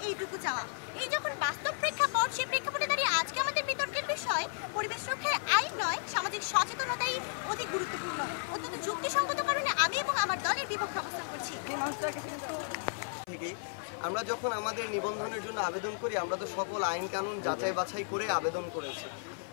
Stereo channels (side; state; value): right; silent; 55 dB below the other